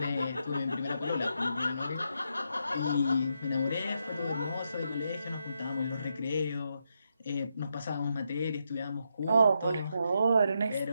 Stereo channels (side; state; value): both; inverted; correlation -0.82